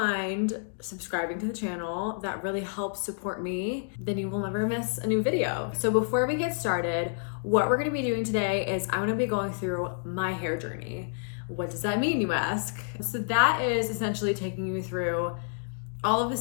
subscribing to the channel, that really helps support me. Then you will never miss a new video. So before we get started, what we're gonna be doing today is I'm gonna be going through my hair journey. What does that mean, you ask? So that is essentially taking you through all of the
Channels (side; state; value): right; silent; digital silence